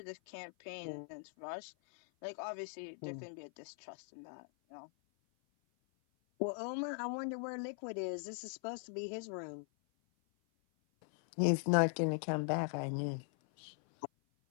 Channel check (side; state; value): right; silent; 51 dB below the other